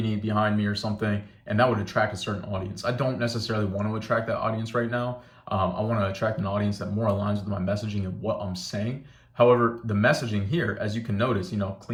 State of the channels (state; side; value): identical; both; correlation 1.00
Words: behind me or something, and that would attract a certain audience. I don't necessarily want to attract that audience right now. I want to attract an audience that more aligns with my messaging and what I'm saying. However, the messaging here, as you can notice,